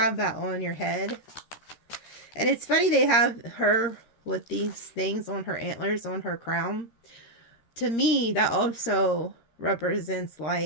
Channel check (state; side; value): late; right; 13 ms